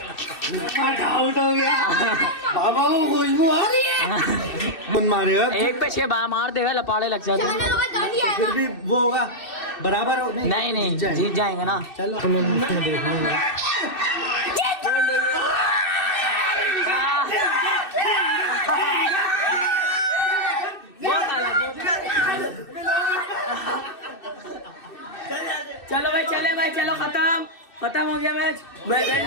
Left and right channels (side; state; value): right; late; 2.6 ms